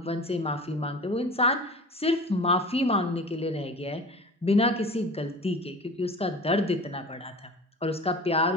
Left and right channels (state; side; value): normal; both; correlation 0.38